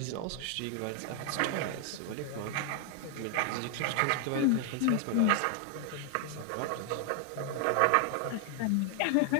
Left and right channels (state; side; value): different; both; correlation 0.00